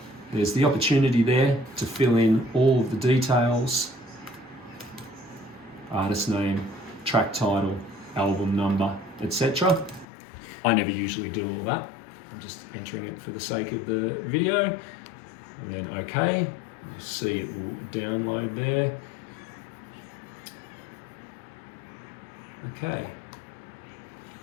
There's the opportunity there to fill in all of the details. Artist name, track title, album number, etc. I never usually do all that. I'm just entering it for the sake of the video. And then OK. You'll see it will download there. Okay.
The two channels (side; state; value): right; drops out; at 10.1 s